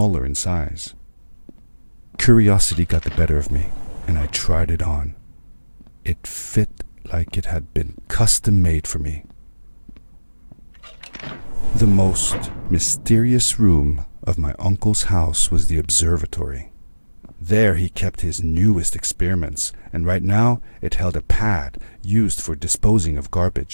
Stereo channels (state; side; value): inverted; both; correlation -1.00